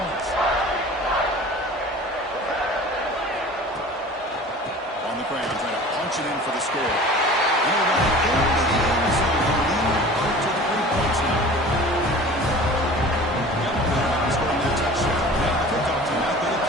On the ground, trying to punch it in for the score. And he'll run it into the end zone. He'll lead up to 3 points now. Yep, scoring that touchdown. Now the kickoff team out there to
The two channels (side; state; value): both; normal; correlation 0.42